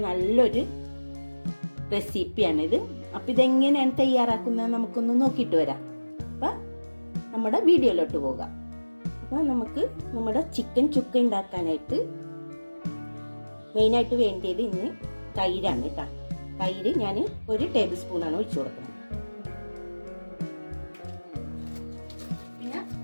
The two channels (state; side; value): inverted; both; correlation -1.00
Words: നല്ലൊരു റെസിപ്പിയാണിത്. അപ്പം ഇതെങ്ങനെയാണ് തയ്യാറാക്കുന്നത് നമുക്കൊന്ന് നോക്കിയിട്ട് വരാം. അപ്പം നമ്മുടെ വീഡിയോയിലോട്ട് പോകാം. അപ്പം നമുക്ക് നമ്മുടെ ചിക്കൻ ചുക്ക ഉണ്ടാക്കാനായിട്ട് മെയിനായിട്ട് വേണ്ടിയത് ഇന്ന് തൈരാണ് കേട്ടോ. തൈര് ഞാൻ 1 ടേബിൾ സ്പൂണാണ് ഒഴിച്ചു കൊടുക്കുന്നത്. പിന്നെ